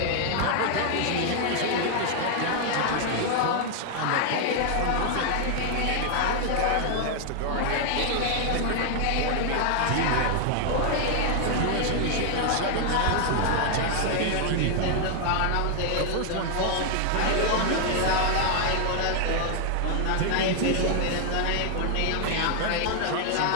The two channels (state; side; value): different; both; correlation 0.00